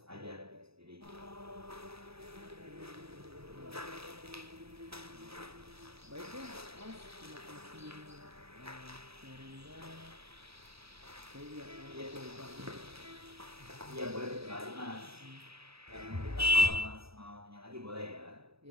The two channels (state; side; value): late; left; 0.77 ms